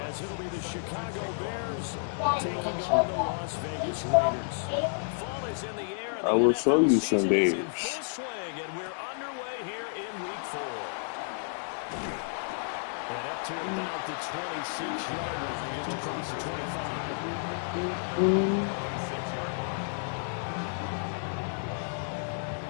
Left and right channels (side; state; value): right; silent; digital silence